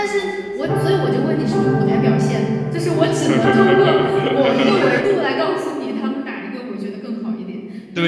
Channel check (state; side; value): identical; both; correlation 1.00